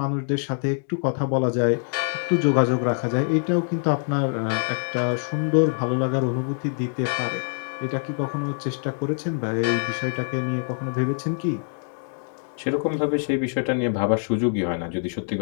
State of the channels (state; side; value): silent; right; 62 dB below the other